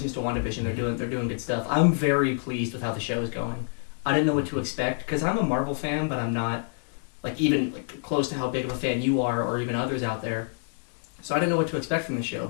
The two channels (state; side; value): silent; right; digital silence